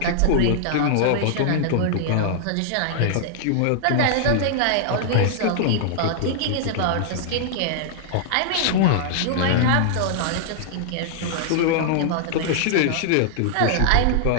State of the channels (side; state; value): both; different; correlation -0.01